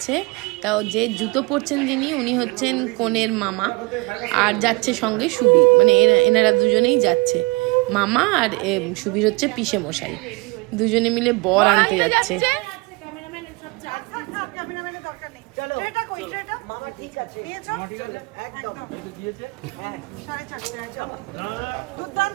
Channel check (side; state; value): left; quieter; 26.8 dB